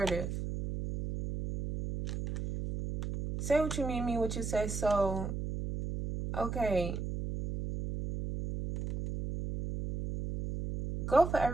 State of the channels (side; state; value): right; noise; hum, 4 dB below the sound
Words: Say what you mean what you say. So, okay. Go for